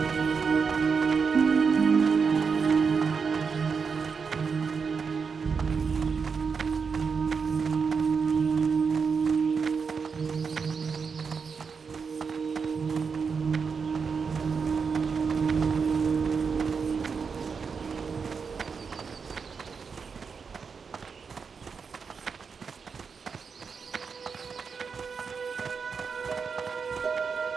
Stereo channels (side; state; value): left; quieter; 5.6 dB